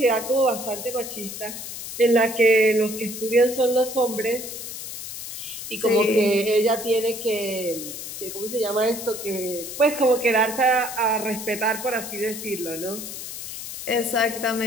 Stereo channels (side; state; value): left; noise; hiss, 9 dB below the sound